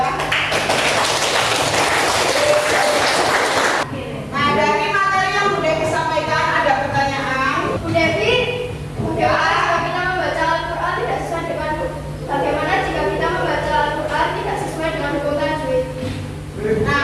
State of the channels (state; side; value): identical; both; correlation 1.00